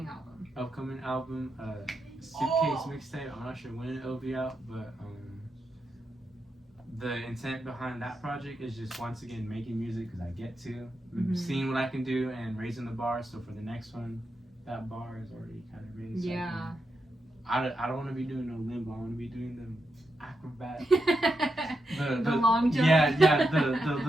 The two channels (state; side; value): normal; both; correlation 0.85